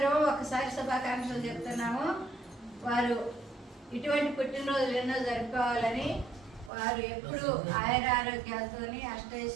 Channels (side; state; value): left; drops out; at 6.7 s